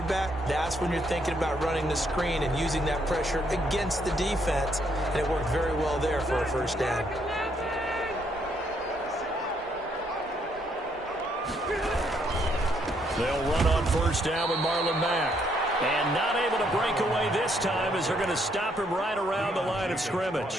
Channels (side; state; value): both; normal; correlation 0.72